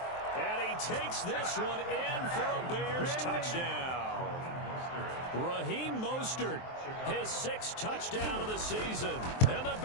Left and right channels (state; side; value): late; right; 23 ms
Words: And he takes this one in for a Bears touchdown. Raheem Mostert, his 6th touchdown of the season. And the